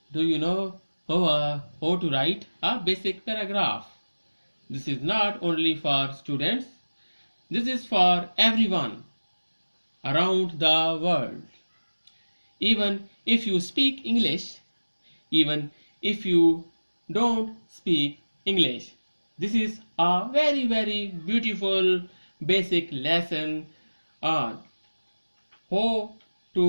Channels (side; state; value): both; inverted; correlation -1.00